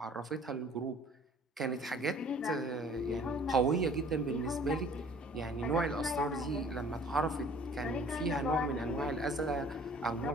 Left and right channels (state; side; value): normal; both; correlation 0.52